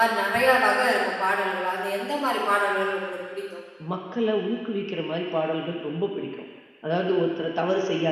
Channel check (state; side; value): identical; both; correlation 1.00